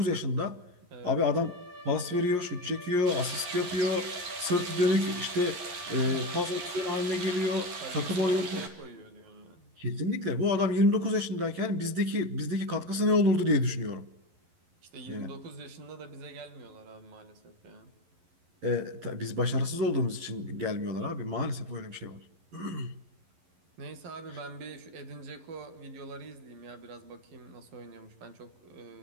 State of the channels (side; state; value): left; late; 11 ms